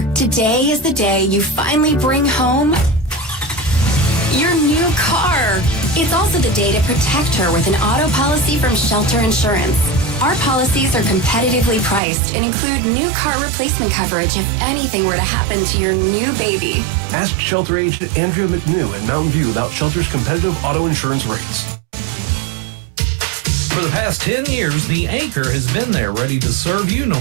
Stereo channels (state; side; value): drops out; left; at 12.0 s